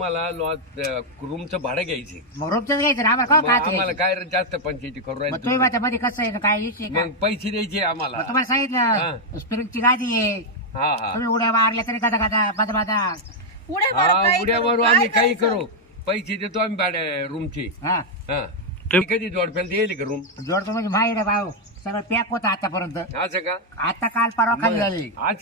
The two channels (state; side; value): normal; both; correlation 0.00